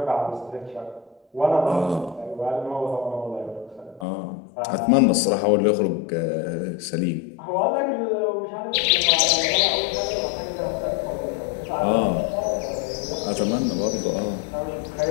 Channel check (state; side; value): drops out; right; at 4.0 s